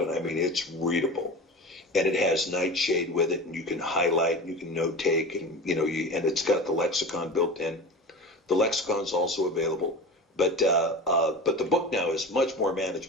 and I mean it's readable, and it has nightshade with it, and you can highlight, and you can note take, and and it's got the lexicon built in. The lexicon's also available. But the book now is much more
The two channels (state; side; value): normal; both; correlation 0.31